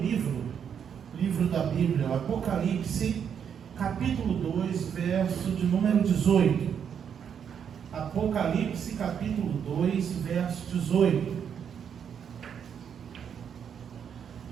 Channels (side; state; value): left; quieter; 7.9 dB